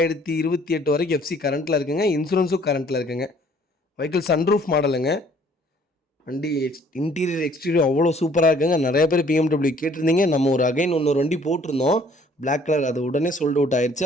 வரைக்கும் எஃப்சி கரண்ட்டில் இருக்குங்க. இன்சூரன்ஸும் கரண்ட்டில் இருக்குங்க. வெஹிக்கிள் சன்ரூஃப் மாடலுங்க. வண்டி இன்டீரியர் எக்ஸ்டீரியர் அவ்வளோ சூப்பராக இருக்குங்க. நிறைய பேர் BMW கேட்டிருந்தீங்க. நம்ம ஒரு இன்னொரு வண்டி போட்டிருந்தோம் பிளாக் கலர். அது உடனே சோல்ட் அவுட் ஆயிடுச்சு.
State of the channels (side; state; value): both; normal; correlation 0.58